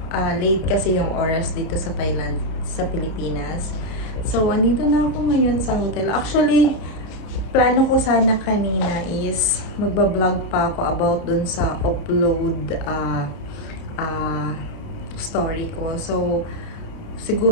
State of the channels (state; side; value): late; right; 30 ms